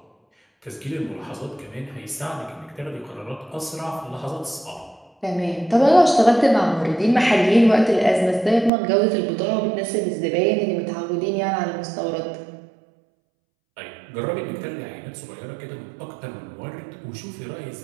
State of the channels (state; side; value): drops out; left; at 8.7 s